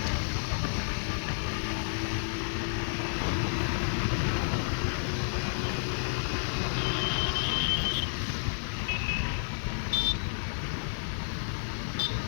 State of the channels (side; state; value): right; silent; digital silence